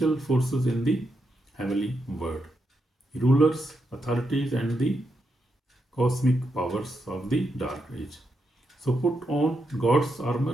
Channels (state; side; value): normal; both; correlation 0.83